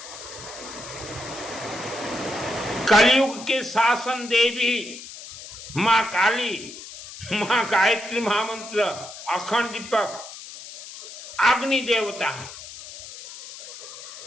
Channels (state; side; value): noise; left; hiss, 13 dB below the sound